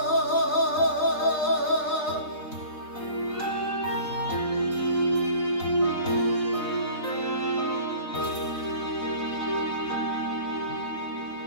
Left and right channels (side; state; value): right; late; 4.0 ms